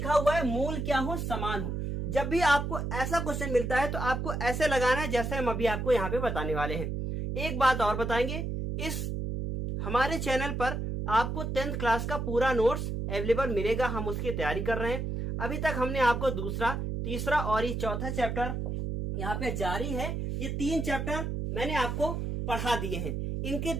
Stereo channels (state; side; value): noise; right; hum, 3 dB below the sound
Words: हुआ है मूल क्या हो, समान हो। जब भी आपको ऐसा क्वेश्चन मिलता है तो आपको ऐसे लगाना है जैसे हम अभी आपको यहाँ पे बताने वाले हैं। एक बात और बताएंगे, इस हमारे चैनल पर आपको 10th क्लास का पूरा नोट्स अवेलेबल मिलेगा। हम उसकी तैयारी कर रहे हैं। अभी तक हमने आपको दूसरा, तीसरा और ये चौथा चैप्टर यहाँ पे जारी है। ये 3 चैप्टर मैंने आपको पढ़ा दिए हैं, इनकी